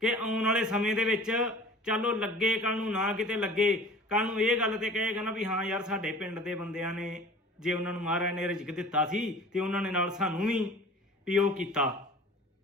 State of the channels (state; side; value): normal; both; correlation 0.44